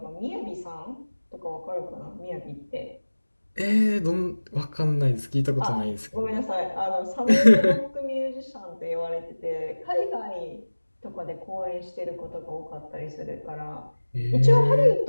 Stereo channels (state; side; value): inverted; both; correlation -1.00